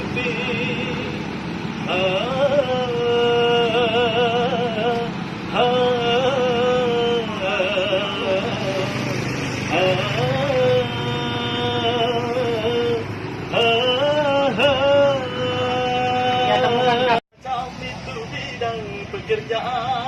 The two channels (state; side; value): identical; both; correlation 1.00